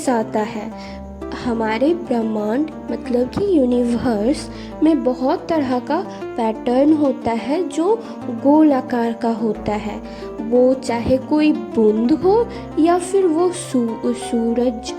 है। हमारे ब्रह्मांड मतलब कि यूनिवर्स में बहुत तरह का पैटर्न होता है जो गोल आकार का होता है। वो चाहे कोई बूंद हो या फिर वो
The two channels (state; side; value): identical; both; correlation 1.00